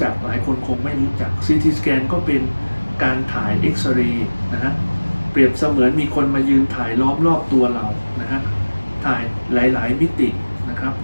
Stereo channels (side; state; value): both; inverted; correlation -1.00